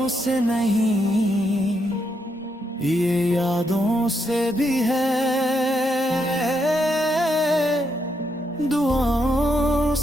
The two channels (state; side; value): normal; both; correlation 0.79